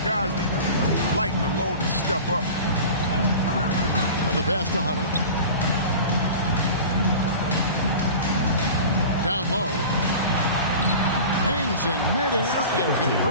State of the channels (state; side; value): inverted; both; correlation -0.36